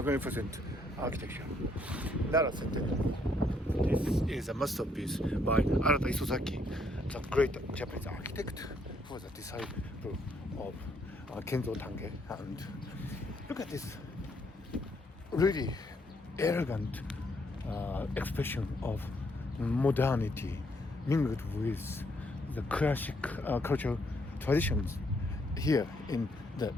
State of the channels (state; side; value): normal; both; correlation 0.71